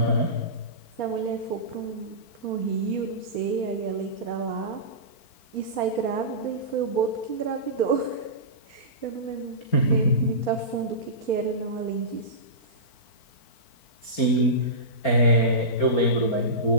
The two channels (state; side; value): late; right; 4.4 ms